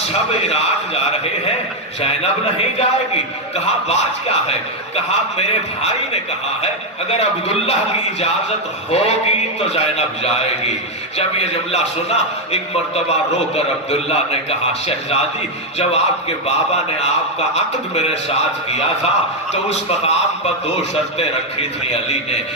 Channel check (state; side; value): normal; both; correlation 0.03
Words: عراق جا رہے ہیں، زینب نہیں جائے گی۔ کہا بات کیا ہے؟ کہا میرے بھائی نے کہا ہے اگر عبداللہ کی اجازت ہوگی تو زینب جائے گی۔ جب یہ جملہ سنا ایک مرتبہ رو کر عبداللہ نے کہا شہزادی جب آپ کے بابا نے آپ کا عقد میرے ساتھ کیا تھا تو اس مقام پر 2 شرطیں رکھی تھی